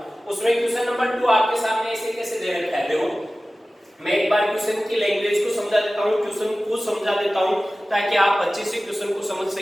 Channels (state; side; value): normal; both; correlation 0.96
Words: उसमें क्वेश्चन नंबर 2 आपके सामने ऐसे कैसे दे रखा है, देखो मैं एक बार क्वेश्चन की लैंग्वेज को समझा देता हूँ, क्वेश्चन को समझा देता हूँ ताकि आप अच्छे से क्वेश्चन को समझ